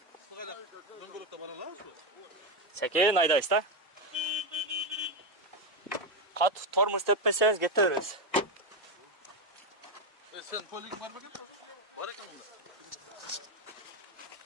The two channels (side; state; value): both; normal; correlation 0.08